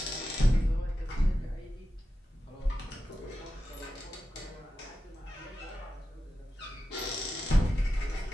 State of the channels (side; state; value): both; normal; correlation 0.92